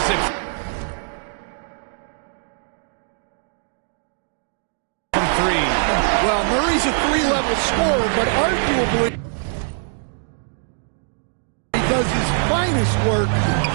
it. From 3. Well, Murray's a 3-level scorer, but arguably he does his finest work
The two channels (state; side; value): silent; left; digital silence